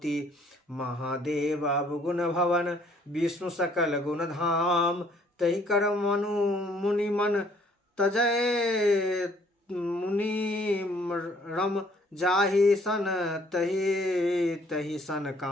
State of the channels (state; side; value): normal; both; correlation 0.62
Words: महादेव अवगुण भवन, विष्णु सकल गुण धाम। तहि कर मुनि मन तजय, मुनि रम जाहि सन तहि सन